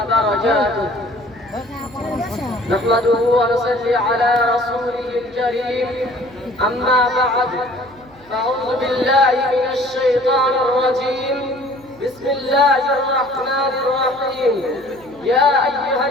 نحمده ونصلي على رسوله الكريم. أما بعد، فأعوذ بالله من الشيطان الرجيم. بسم الله الرحمن الرحيم. يا أيها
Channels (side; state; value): right; noise; hum, 26 dB below the sound